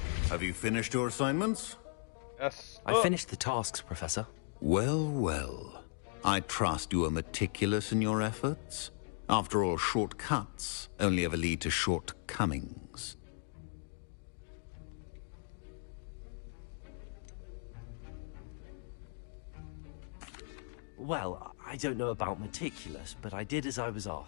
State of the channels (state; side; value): silent; right; digital silence